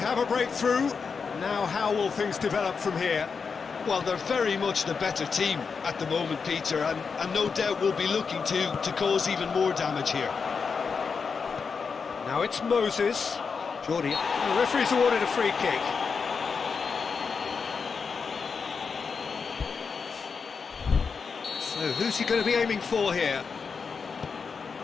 a breakthrough. Now how will things develop from here? Well, they're very much the better team at the moment, Peter, and no doubt will be looking to cause even more damage here. Now it's Moses. Jordi, the referee's awarded a free kick. So who's he going to be aiming for here?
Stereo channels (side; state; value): right; quieter; 5.5 dB